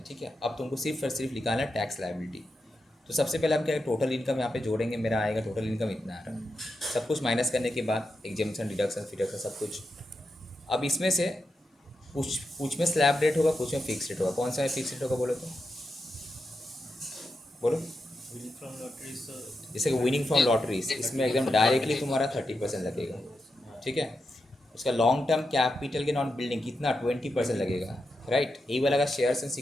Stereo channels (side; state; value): both; normal; correlation 0.87